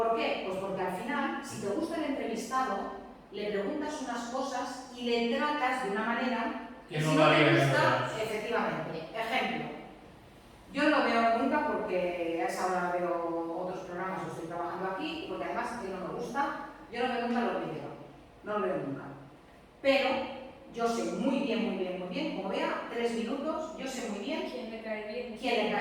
qué? Pues porque al final, si te gusta el entrevistado, le preguntas unas cosas y le tratas de una manera que si no no te varía gusta, efectivamente. Ejemplo, yo no lo veo nunca porque a esa hora veo otros programas, estoy trabajando aquí, porque además a mí no me gusta, yo no veo nunca los vídeos, no lo veo nunca. Pero yo sé muy bien, como vea 3 minutos, yo sé muy bien ¿Quién le cae bien? quién le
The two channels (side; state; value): both; identical; correlation 1.00